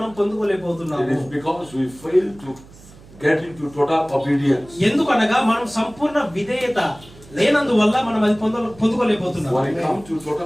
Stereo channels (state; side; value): noise; right; hum, 22 dB below the sound